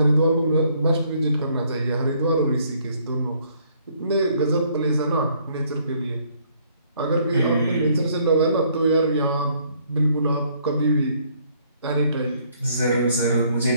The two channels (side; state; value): both; inverted; correlation -0.65